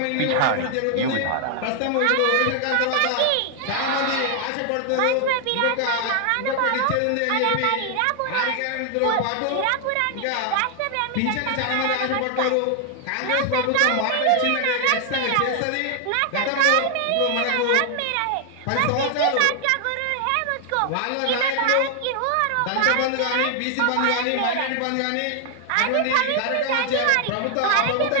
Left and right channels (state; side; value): different; both; correlation 0.00